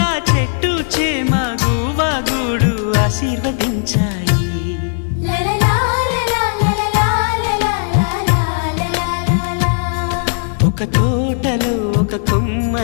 చెట్టు చేమ గువగూడు ఆశీర్వదించాయి. ఒక తోటలో ఒక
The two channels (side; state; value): right; silent; digital silence